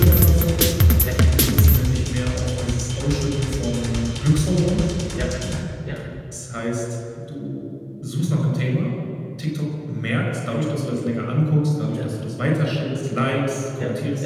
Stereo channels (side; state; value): both; identical; correlation 1.00